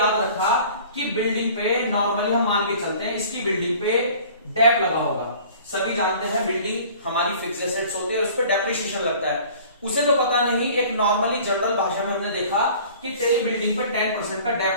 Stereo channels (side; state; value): both; inverted; correlation -0.48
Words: रखा कि बिल्डिंग पे नॉर्मली हम मान के चलते हैं इसकी बिल्डिंग पे डेप लगा होगा। सभी जानते हैं बिल्डिंग हमारी फिक्स एसेट्स होती है, उस पर डेप्रिसिएशन लगता है। उसे तो पता नहीं, एक नॉर्मली जनरल भाषा में हमने देखा कि तेरी बिल्डिंग पे 10% का